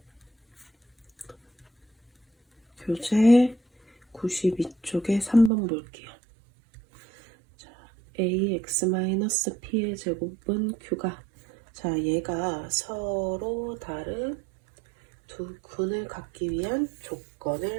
교재 92쪽에 3번 볼게요. 자, ax-p의 제곱은 q가, 자, 얘가 서로 다른 두 근을 갖기 위한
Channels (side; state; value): left; drops out; at 5.5 s